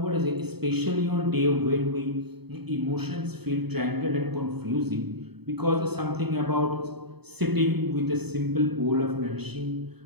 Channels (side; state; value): left; late; 0.97 ms